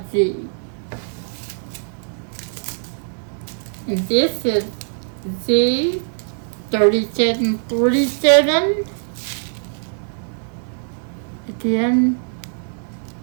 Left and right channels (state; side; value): silent; left; digital silence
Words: Z. And this is Z3747. Again,